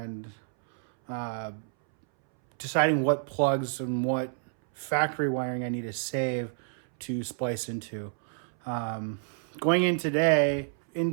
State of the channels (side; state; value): left; silent; 59 dB below the other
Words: deciding what plugs and what factory wiring I need to save to splice into. Going into today,